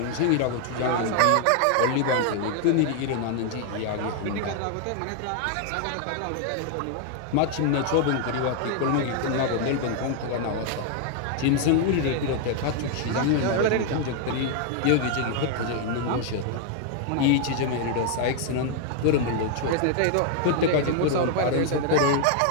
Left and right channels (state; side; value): different; both; correlation 0.00